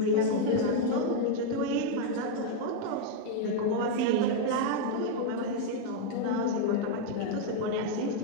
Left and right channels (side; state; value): both; different; correlation 0.00